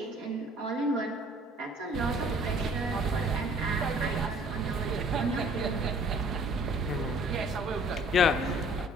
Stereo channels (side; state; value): both; normal; correlation 0.54